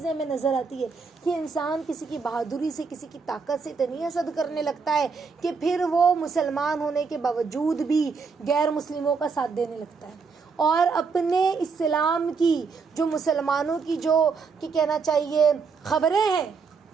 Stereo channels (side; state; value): left; quieter; 5.1 dB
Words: ہمیں نظر آتی ہے کہ انسان کسی کی بہادری سے، کسی کی طاقت سے اتنی حسد کرنے لگتا ہے کہ پھر وہ مسلمان ہونے کے باوجود بھی غیر مسلموں کا ساتھ دینے لگتا ہے، اور اپنے اسلام کی جو مسلمانوں کی جو کہ کہنا چاہیے خبریں ہیں،